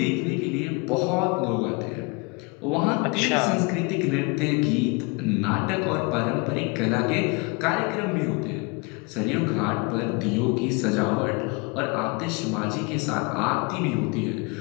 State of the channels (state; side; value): quieter; right; 29.0 dB